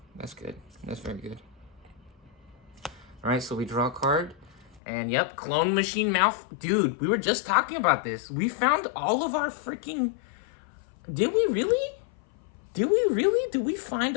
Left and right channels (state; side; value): drops out; right; at 4.8 s